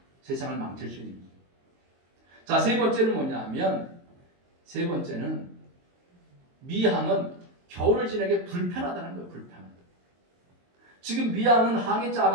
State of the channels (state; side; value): late; left; 22 ms